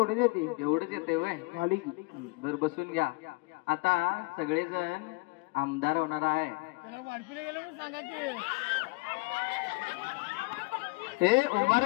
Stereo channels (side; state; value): right; quieter; 27.4 dB